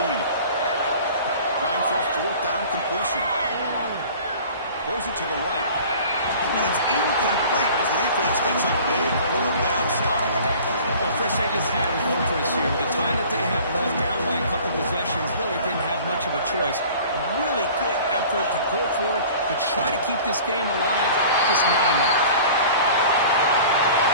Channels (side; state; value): both; inverted; correlation -0.45